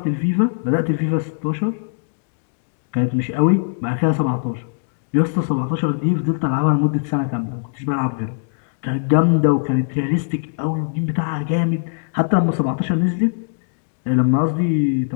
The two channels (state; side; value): silent; right; digital silence